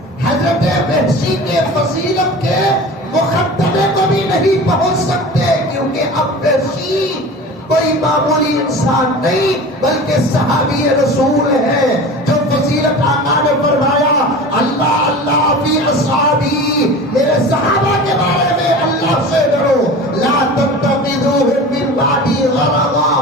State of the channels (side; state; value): both; normal; correlation 0.36